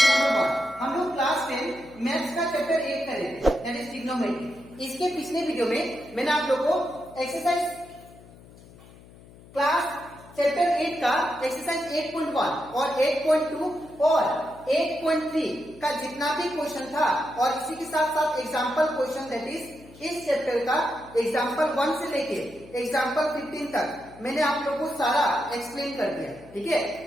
नंबर 1। हम लोग क्लास 10 मैथ्स का चैप्टर 8 कर रहे थे दैट इज ट्रिग्नोमेट्री। इसके पिछले वीडियो में मैंने आप लोगों को एक्सरसाइज क्लास चैप्टर 8 का एक्सरसाइज 8.1 और 8.2 और 8.3 का जितना भी क्वेश्चन था और इसी के साथ साथ एग्जाम्पल क्वेश्चन दैट इज इस चैप्टर का एग्जाम्पल 1 से लेके एग्जाम्पल 15 तक मैंने आप लोगों को सारा एक्सप्लेन कर दिया। ठीक है,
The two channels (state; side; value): noise; left; hum, 21 dB below the sound